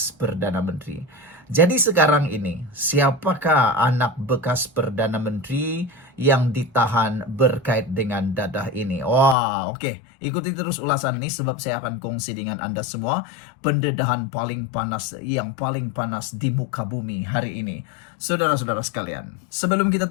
Perdana Menteri. Jadi sekarang ini, siapakah anak bekas Perdana Menteri yang ditahan berkait dengan dadah ini? Wah, oke. Ikuti terus ulasan ini sebab saya akan kongsi dengan Anda semua pendedahan paling panas, yang paling panas di muka bumi hari ini. Saudara-saudara sekalian, sebelum kita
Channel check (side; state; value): right; drops out; at 9.3 s